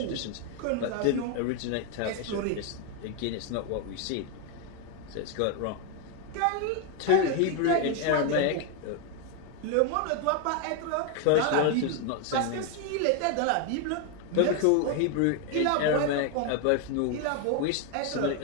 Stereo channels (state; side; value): different; both; correlation 0.01